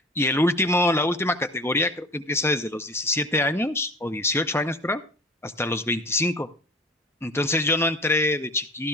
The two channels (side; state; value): both; normal; correlation 0.39